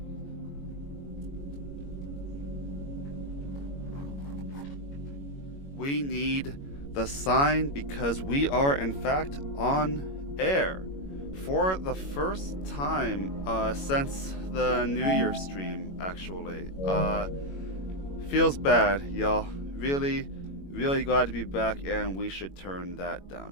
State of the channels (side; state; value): right; late; 21 ms